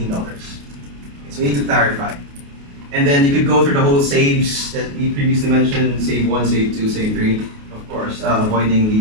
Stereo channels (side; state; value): left; late; 28 ms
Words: So we need to clarify. And then you could go through the whole saves that we previously mentioned, save 1, save 2, save 3, of course, avoiding